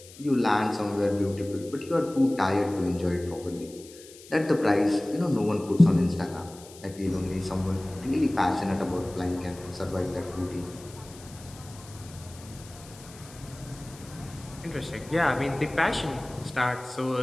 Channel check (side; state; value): left; noise; hiss, 20 dB below the sound